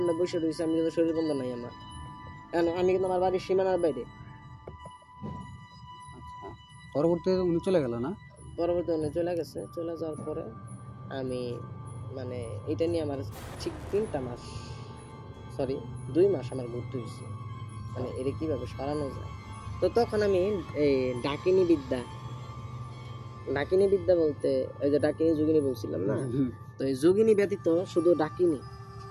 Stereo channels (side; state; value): both; identical; correlation 1.00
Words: বসে রয়েছি, আমি কিন্তু শরীর বন্ধ নাই আমার, কারণ আমি কিন্তু আমার বাড়ির সীমানার বাইরে। আচ্ছা, পরবর্তীতে উনি চলে গেল না? পরবর্তী উনি চলে গেছে। চলে যাওয়ার পরে আমি মানে এটা নিয়ে আমার ঠিক 2 মাস আমার ঘুরতে হয়েছে, মানে এটা কিভাবে সরানো যায়। তো তখন আমি এই ডাকিনী বিদ্যা বলতে ওই যে ডাকিনী যোগিনী বলছিলাম না, তো এই যোগিনী ব্যতীত শুধু ডাকিনী,